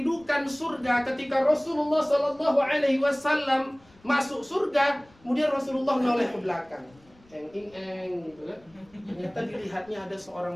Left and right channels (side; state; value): left; noise; rumble, 29 dB below the sound